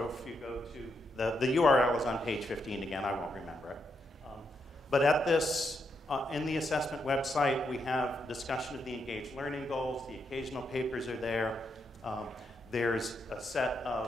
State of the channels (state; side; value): normal; both; correlation 0.80